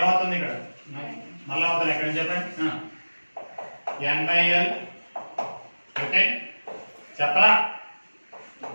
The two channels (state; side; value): inverted; both; correlation -1.00